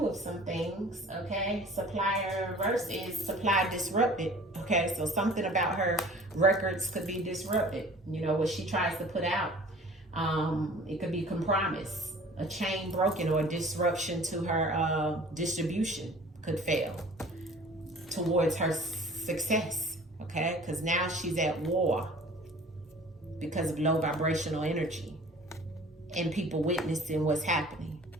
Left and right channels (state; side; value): normal; both; correlation 0.47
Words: of some things, okay? Supplier in reverse is supply disrupted, okay? So something about her records could be disrupted, you know, what she tries to put out. It could be compromise, a chain broken, or a disruption to her distribution could fail towards her success, okay? Because now she's at war because of low vibrational energy and people witnessing what's happening.